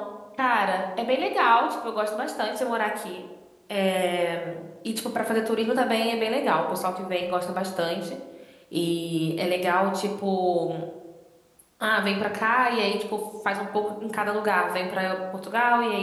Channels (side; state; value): both; identical; correlation 1.00